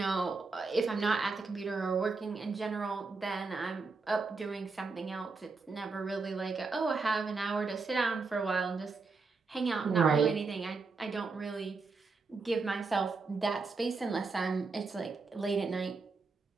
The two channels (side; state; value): left; quieter; 4.2 dB